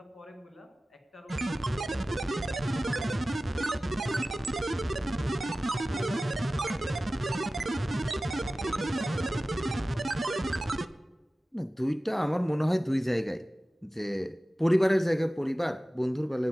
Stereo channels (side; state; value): both; normal; correlation 0.96